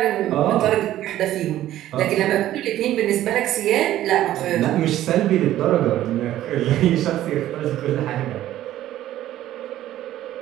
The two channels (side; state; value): left; quieter; 13.5 dB